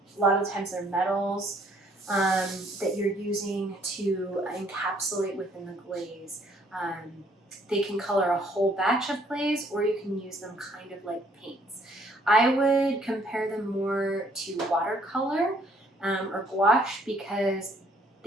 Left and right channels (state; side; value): normal; both; correlation 0.64